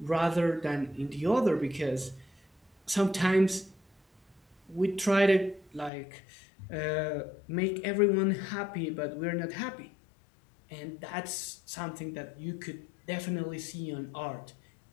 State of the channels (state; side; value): drops out; right; at 5.9 s